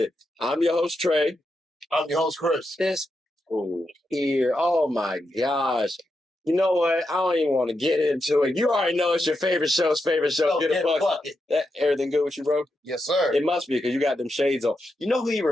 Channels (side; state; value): both; normal; correlation 0.86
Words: I'm your host, Trey. I'm your host, Chris. This fool here, oh my gosh. You know what? I don't even want to get into it. You already know it's your favorite show, Get a Bucket. Everything good with you, bro? Yes, sir. It must be because you got them shades on. You know who he